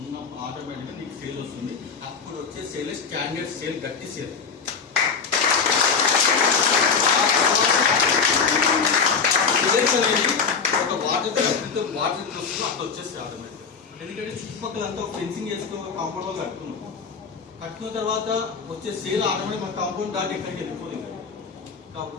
ఆటోమేటిక్గా నీకు సేల్ వస్తుంది. అప్పుడు వచ్చే సేల్ స్టాండర్డ్ సేల్, గట్టి సేల్. ఒక వాటర్ వస్తుంది, అట్లా వచ్చేస్తే ఆటోమేటిక్గా. ఎందుకంటే చుట్టుపక్కల అంతా ఫెన్సింగ్ చేసుకో, కాంపౌండ్ వాళ్ళు కట్టుకున్న తర్వాత వచ్చే సేల్ ఆటోమేటిక్ మన కాంపౌండ్ దాటి ఎక్కడికి వెళ్ళిపోతుంది.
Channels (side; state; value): right; quieter; 5.6 dB